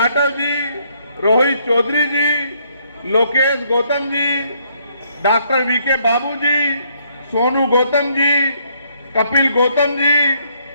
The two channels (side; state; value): both; inverted; correlation -0.70